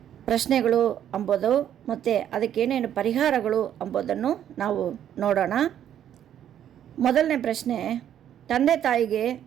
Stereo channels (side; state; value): left; quieter; 10.3 dB